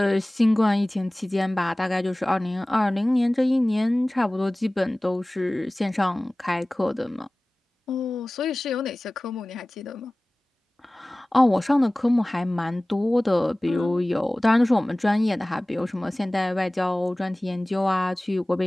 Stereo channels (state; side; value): normal; both; correlation 0.98